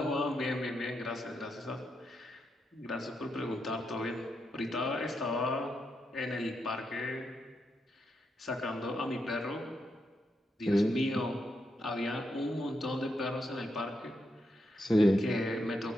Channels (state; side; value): normal; both; correlation 0.83